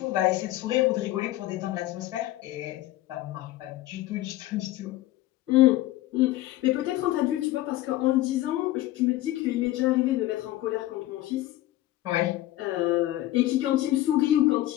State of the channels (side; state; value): right; quieter; 15.5 dB